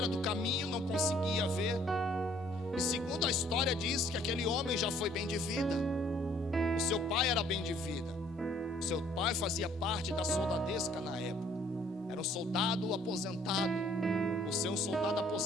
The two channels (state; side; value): normal; both; correlation 0.61